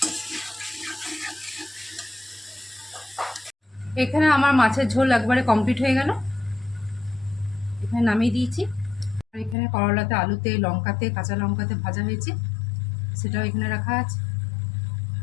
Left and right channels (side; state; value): right; drops out; at 9.6 s